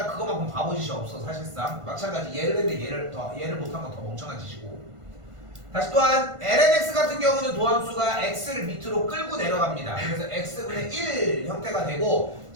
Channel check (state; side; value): late; left; 1.5 ms